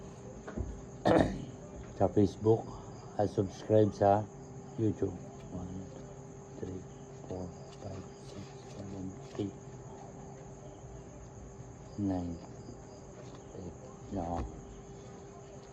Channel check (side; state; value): both; identical; correlation 1.00